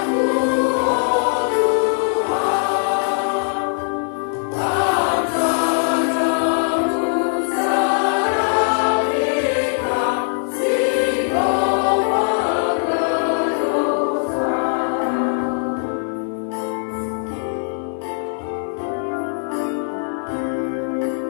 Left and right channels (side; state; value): right; silent; digital silence